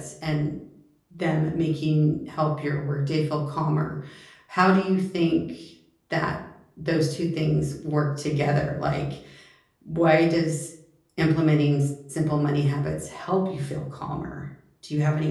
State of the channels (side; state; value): both; identical; correlation 1.00